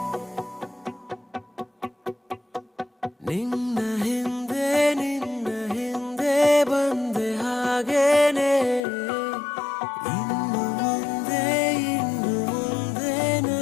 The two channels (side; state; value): right; drops out; at 8.8 s